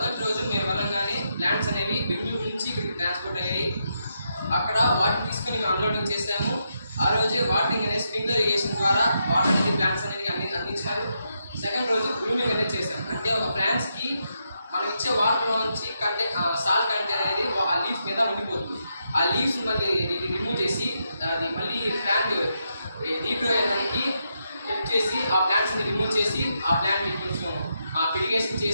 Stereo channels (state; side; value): inverted; both; correlation -0.82